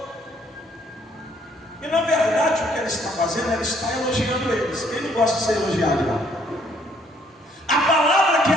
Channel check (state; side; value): normal; both; correlation 0.65